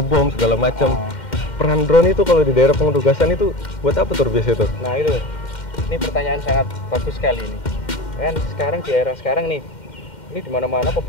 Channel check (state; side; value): late; right; 2.1 ms